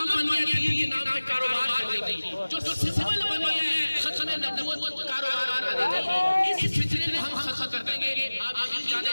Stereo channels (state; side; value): inverted; both; correlation -1.00